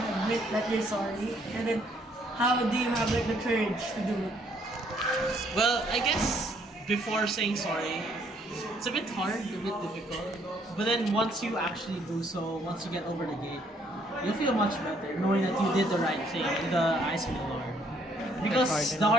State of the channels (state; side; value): normal; both; correlation 0.67